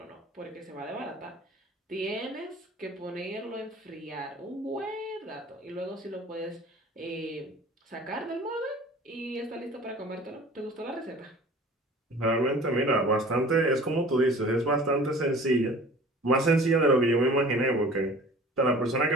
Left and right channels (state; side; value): normal; both; correlation 0.45